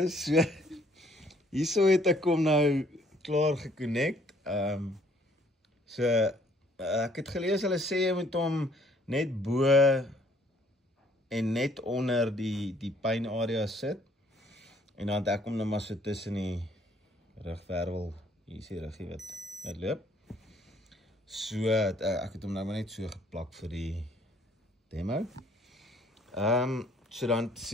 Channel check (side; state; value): both; normal; correlation 0.62